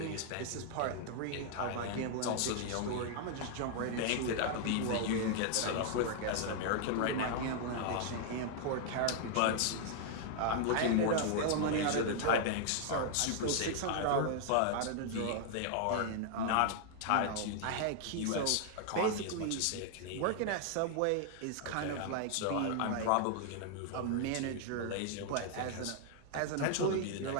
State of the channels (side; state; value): both; different; correlation 0.00